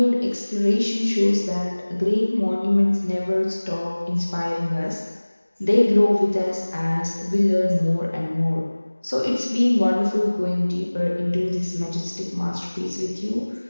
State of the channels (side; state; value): both; inverted; correlation -1.00